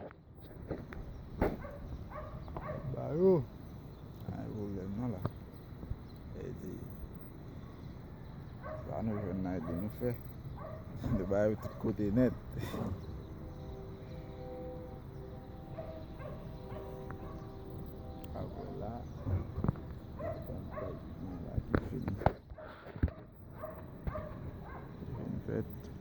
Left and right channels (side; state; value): both; identical; correlation 1.00